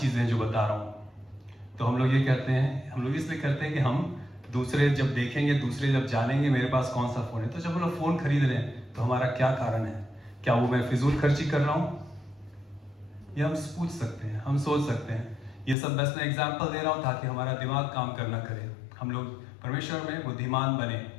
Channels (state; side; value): drops out; right; at 15.8 s